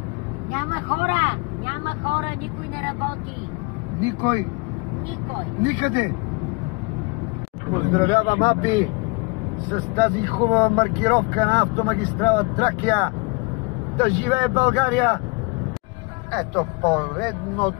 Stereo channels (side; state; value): right; quieter; 28.8 dB